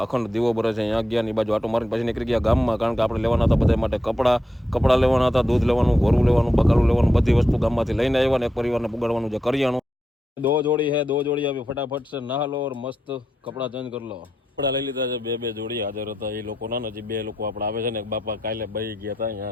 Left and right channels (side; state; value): both; normal; correlation 0.85